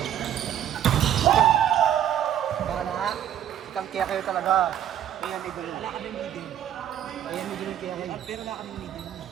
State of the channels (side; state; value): left; quieter; 10.5 dB